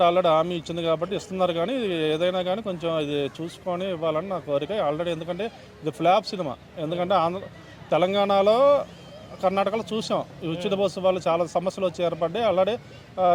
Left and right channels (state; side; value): identical; both; correlation 1.00